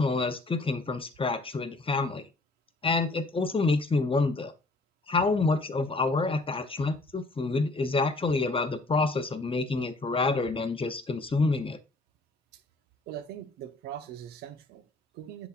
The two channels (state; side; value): quieter; right; 3.0 dB